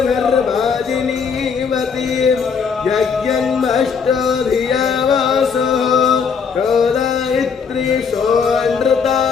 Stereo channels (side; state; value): right; quieter; 6.0 dB